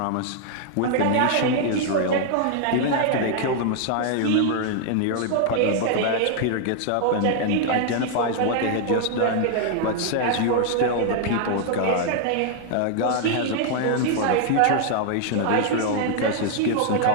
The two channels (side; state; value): both; different; correlation 0.00